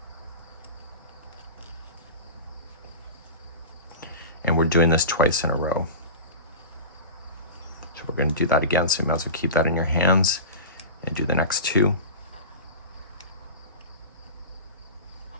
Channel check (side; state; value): both; inverted; correlation -0.31